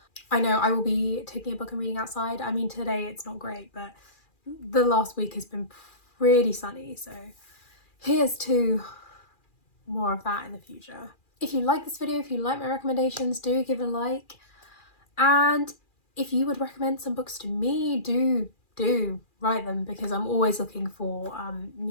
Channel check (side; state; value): right; late; 2.4 ms